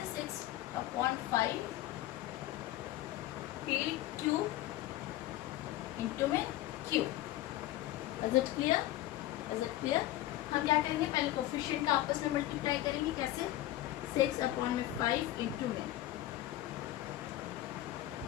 6/5 p³ इंटू में q। Is it clear? हम क्या करेंगे, पहले कोफिशिएंट का आपस में मल्टीप्लाई करेंगे। कैसे? 6/5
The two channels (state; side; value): quieter; right; 15.0 dB